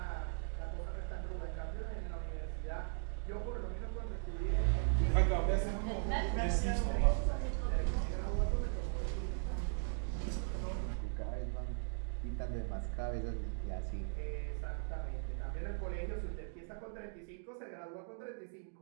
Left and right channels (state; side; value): silent; left; digital silence